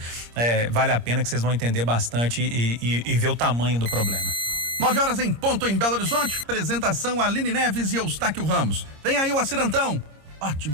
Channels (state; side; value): late; left; 26 ms